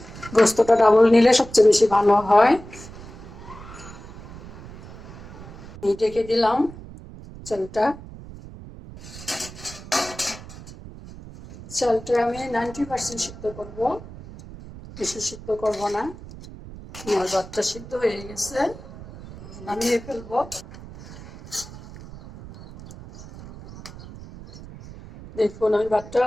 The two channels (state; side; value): noise; right; rumble, 15 dB below the sound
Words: গোস্তটা ডাবল নিলে সবচেয়ে বেশি ভালো হয়। ঢেকে দিলাম চালটা। চালটা আমি 90% সিদ্ধ করব, বেশি সিদ্ধ করব না। আমার ভাতটা সিদ্ধ হয়ে গেছে, নামিয়ে ফেলবো। দেখুন আমি ভাতটা